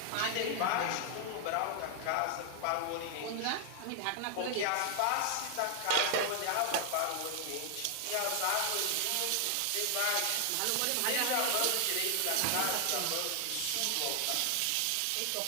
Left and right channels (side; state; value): both; different; correlation 0.00